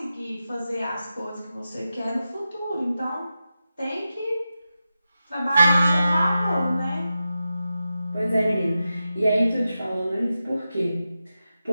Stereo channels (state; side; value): inverted; both; correlation -0.91